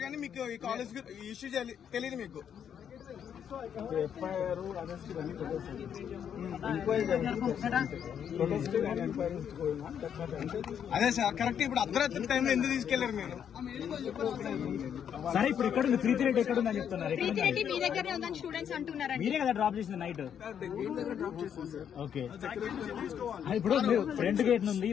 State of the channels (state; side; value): quieter; right; 8.5 dB